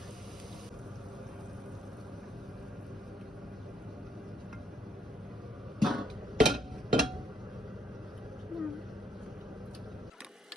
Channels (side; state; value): both; normal; correlation 0.74